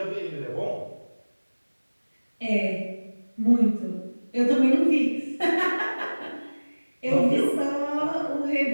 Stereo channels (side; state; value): both; inverted; correlation -1.00